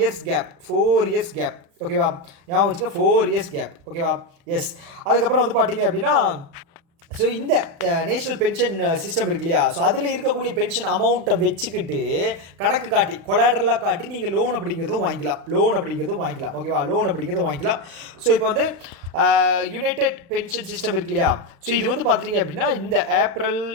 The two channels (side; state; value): left; late; 36 ms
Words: gap. ஓகேவா? ஞாபகம் வச்சுக்க, 4 years கேப். ஓகேவா? எஸ், அதுக்கப்புறம் வந்து பார்த்தீங்க அப்படின்னா ஸோ இந்த நேஷ்னல் பென்ஷன் சிஸ்டம் இருக்கு இல்லையா, ஸோ அதில் இருக்கக்கூடிய பென்ஷன் அமௌண்ட்டை வச்சுக்கிட்டு கணக்கு காட்டி கொலாட்ரலாக காட்டி நீங்கள் லோன் அப்படிங்கிறதும் வாங்கிக்கலாம். ஓகேவா? லோன் அப்படிங்கிறதும் வாங்கிக்கலாம். ஸோ இப்போ வந்து யுனைடெட் பென்ஷன் சிஸ்டம் இருக்கு இல்லையா, ஸோ இது வந்து பார்த்துட்டிங்க அப்படின்னா இந்த ஏப்ரல்